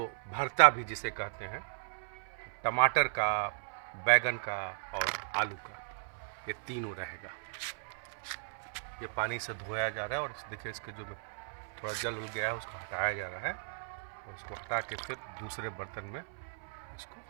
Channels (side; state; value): left; silent; 54 dB below the other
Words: भरता भी जिसे कहते हैं, टमाटर का, बैगन का और आलू का, ये तीनों रहेगा। ये पानी से धोया जा रहा है और देखिए इसके जो थोड़ा जल उल गया है उसको हटाया जा रहा है और उसको हटा के फिर दूसरे बर्तन में इसको